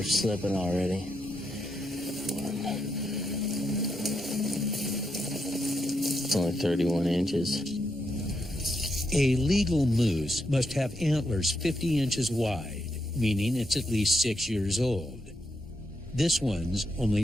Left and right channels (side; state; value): both; normal; correlation 0.82